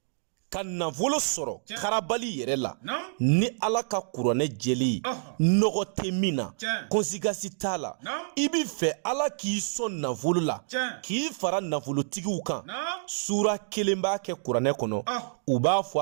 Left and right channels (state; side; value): silent; left; digital silence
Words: ka nafolo sɔrɔ karabali yɛrɛ la ni ala ka kuranɛ jeli nɔgɔ tɛ min na konsigasi t'a la i b'i fɛ ala k'i sɔn nafolo la k'i fara nafolotigiw kan sura kelen b'a kɛ kuranɛ kɔnɔ u b'a